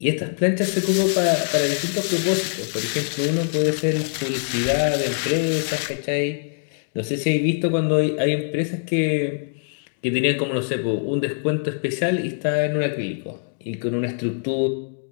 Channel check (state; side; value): silent; right; digital silence